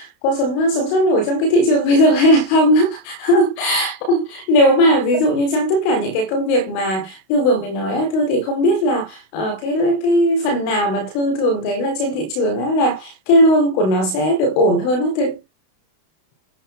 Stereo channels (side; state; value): right; late; 32 ms